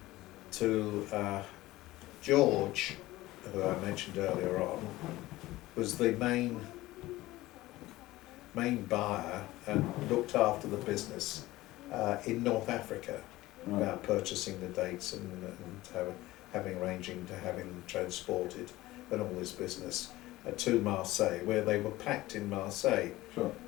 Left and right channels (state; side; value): quieter; right; 17.8 dB